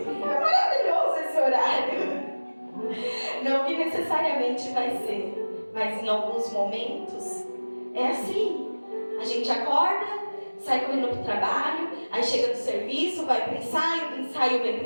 maravilhoso esse horário. Não que necessariamente vai ser, mas em alguns momentos é assim. A gente acorda, sai correndo pro trabalho, aí chega do serviço, vai pro ensaio, do ensaio vem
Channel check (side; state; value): both; inverted; correlation -1.00